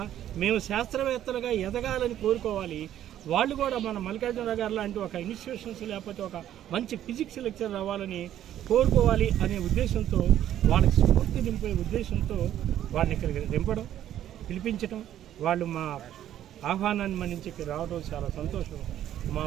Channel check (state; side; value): quieter; left; 11.5 dB